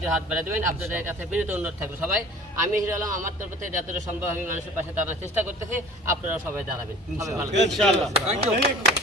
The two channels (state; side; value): normal; both; correlation 0.45